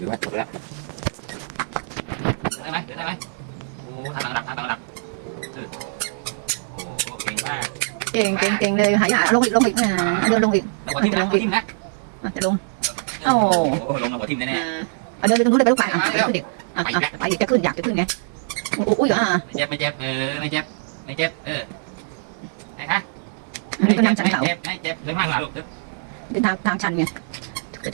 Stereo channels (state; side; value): silent; left; digital silence